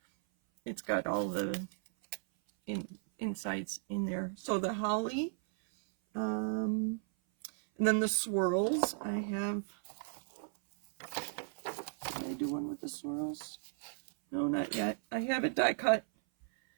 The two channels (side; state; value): left; silent; 54 dB below the other